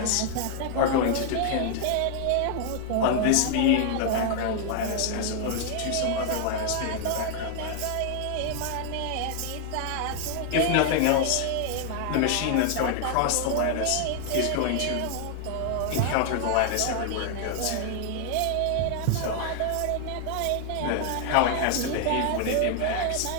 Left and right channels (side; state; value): both; different; correlation 0.00